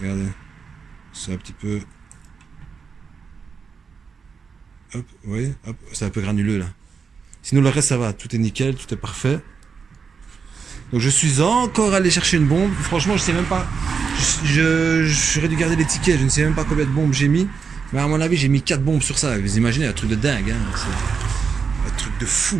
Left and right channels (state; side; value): quieter; left; 5.7 dB